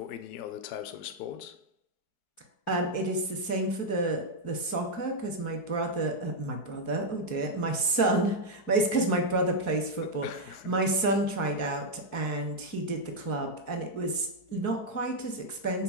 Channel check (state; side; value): late; right; 4.7 ms